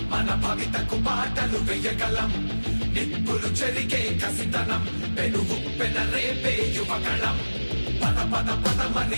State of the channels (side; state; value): both; inverted; correlation -1.00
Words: మన భవితకు పాటలు వేయగలం నిప్పులు చెరిగే కసితనం పెనుగు పెనరేపే యువగళం పద పదమని